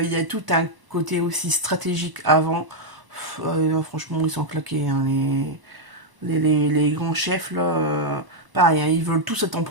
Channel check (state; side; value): late; left; 1.0 ms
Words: Il y a tout un côté aussi stratégique avant. Franchement, ils sont claqués. Hein, les grands chefs, là. Pareil, hein, ils veulent tous être en